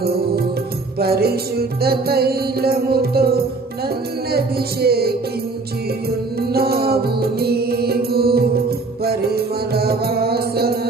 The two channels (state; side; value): quieter; left; 3.7 dB